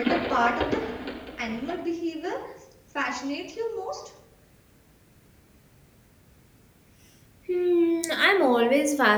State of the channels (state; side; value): identical; both; correlation 1.00